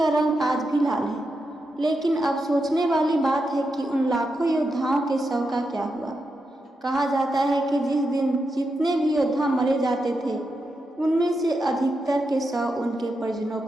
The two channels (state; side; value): normal; both; correlation 0.86